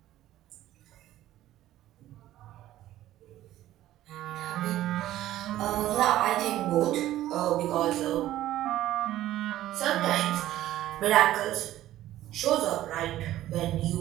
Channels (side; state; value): left; quieter; 14.0 dB